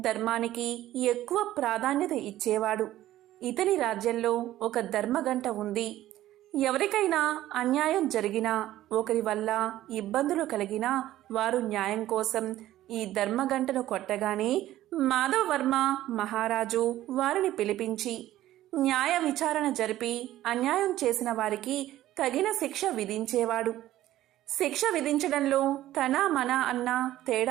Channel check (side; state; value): left; quieter; 14.1 dB